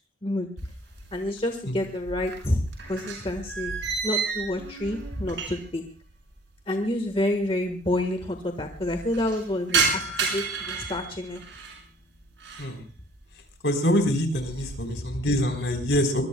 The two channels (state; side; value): normal; both; correlation 0.55